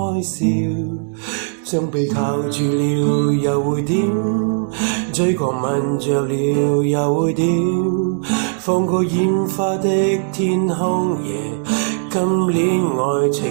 笑，將被靠住了又會點？嘴角吻着了又會點？放過煙花的天空夜，今年愛情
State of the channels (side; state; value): left; silent; digital silence